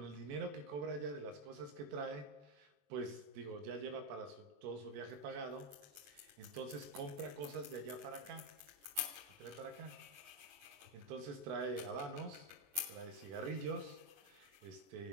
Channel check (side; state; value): left; late; 21 ms